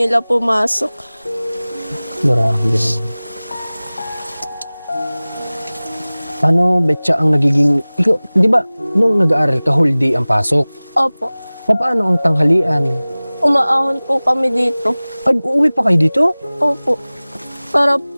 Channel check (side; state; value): both; inverted; correlation -0.99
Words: pumasok. Grabe naman. Ano, Betcha, ang nagiging... Ikaw, di ba, nung nag-aaral ka, whole day ang pasok? Opo. Paano ang tanghalian? Umaahon po kami dito. Ay, uuwi pa kayo dito? Opo. Para